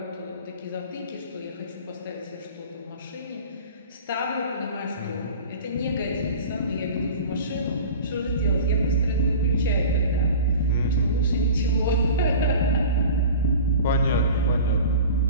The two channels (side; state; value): both; inverted; correlation -0.38